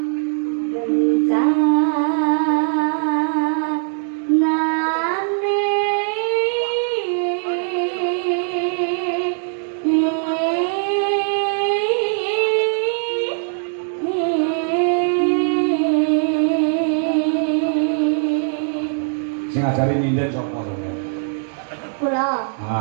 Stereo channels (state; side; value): silent; left; digital silence